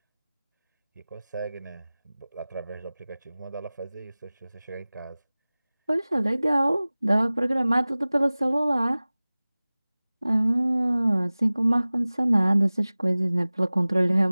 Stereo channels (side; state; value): both; inverted; correlation -0.99